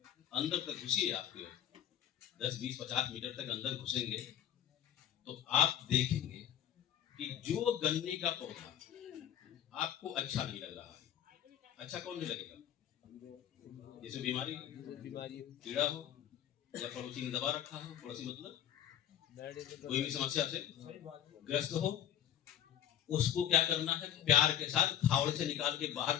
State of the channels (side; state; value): right; quieter; 10.6 dB